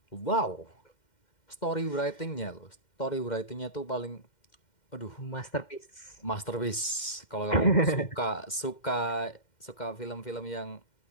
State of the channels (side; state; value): right; late; 2.1 ms